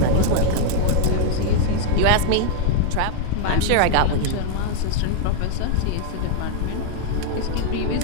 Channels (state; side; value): different; both; correlation -0.01